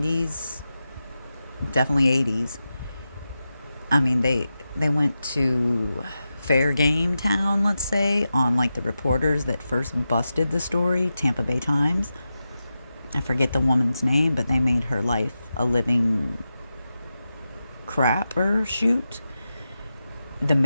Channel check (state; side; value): inverted; both; correlation -0.91